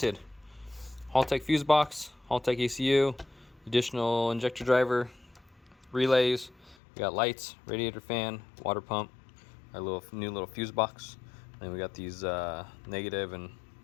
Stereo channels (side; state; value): right; drops out; at 6.8 s